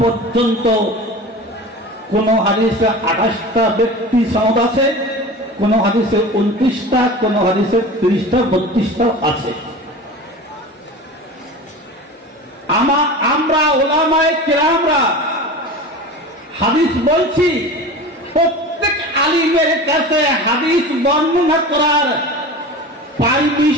পর্যন্ত। কোন হাদিসে 28টা ব্যক্তি সনদ আছে, কোন হাদিসে 29টা, কোন হাদিসে 30টা 32টা আছে। আমরা উলামায়ে কেরামরা হাদিস বলছি, প্রত্যেক আলিমের কাছে হাদিস বর্ণনা করার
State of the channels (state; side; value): normal; both; correlation 0.34